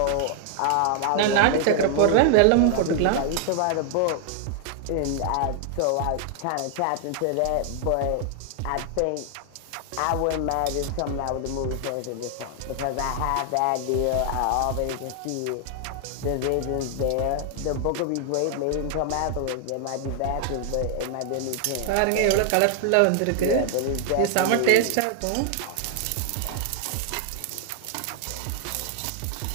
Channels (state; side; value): different; both; correlation 0.00